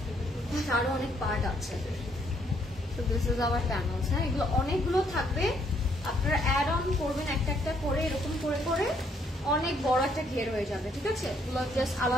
আরো অনেক পার্ট আছে। তো দিস ইজ আওয়ার প্যানেলস। হ্যাঁ, এগুলো অনেকগুলো থাকবে, আপনারা অ্যাড অন করবেন একটা একটা করে, এরকম করে করে অনেক বড় একটা ঘের হয়ে যাবে। ঠিক আছে, এগুলো জাস্ট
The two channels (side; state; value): both; normal; correlation 0.69